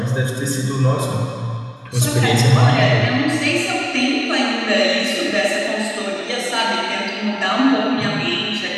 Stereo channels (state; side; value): identical; both; correlation 1.00